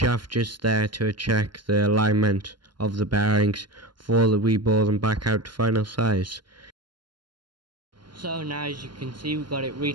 just there to check the alignment of the bearings before we bore them back out to final size. So now, as you can see, we've got it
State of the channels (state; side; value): late; left; 0.71 ms